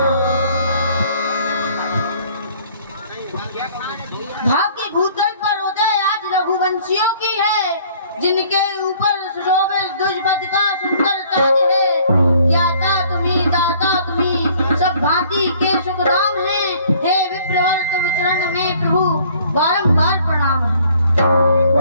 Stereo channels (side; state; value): both; inverted; correlation -0.57